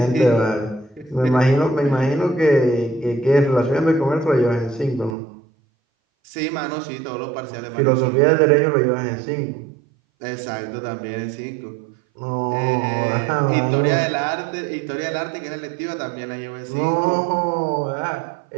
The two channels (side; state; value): left; drops out; at 5.2 s